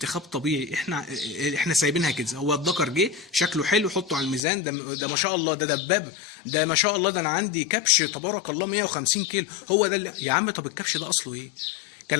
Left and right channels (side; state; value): right; drops out; at 4.4 s